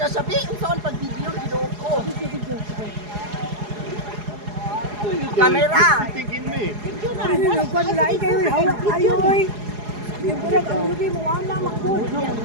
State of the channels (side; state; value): left; late; 4.8 ms